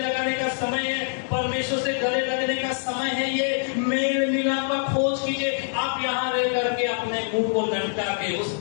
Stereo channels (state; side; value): silent; right; digital silence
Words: का समय है, परमेश्वर से गले लगने का समय है। ये मेल मिलाप का खोज कीजिए। आप यहाँ रह करके अपने मुंह को लटका के उस